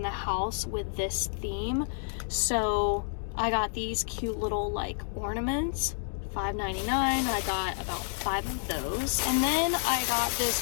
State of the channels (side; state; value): right; silent; digital silence